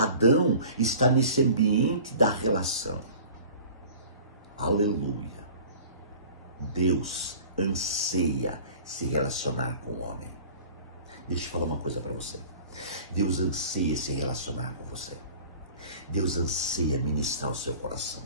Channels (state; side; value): inverted; both; correlation -0.44